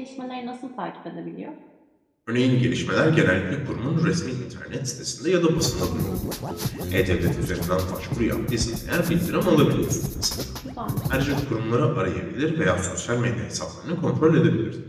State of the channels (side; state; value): both; identical; correlation 1.00